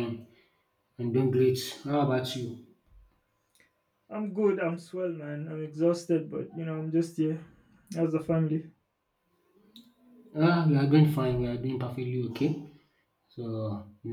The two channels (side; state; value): both; identical; correlation 1.00